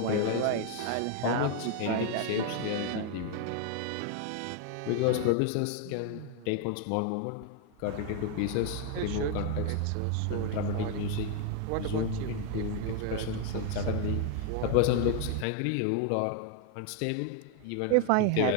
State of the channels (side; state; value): both; different; correlation 0.00